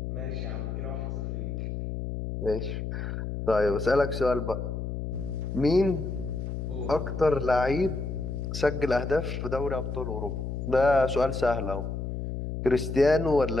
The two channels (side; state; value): left; noise; hum, 4 dB below the sound